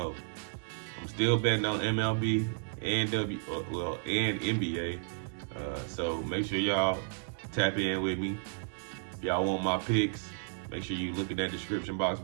I'm still betting on MLB and NBA, so make sure y'all tap in with me. If y'all want my picks, make sure you look in that description box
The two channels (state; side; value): silent; left; digital silence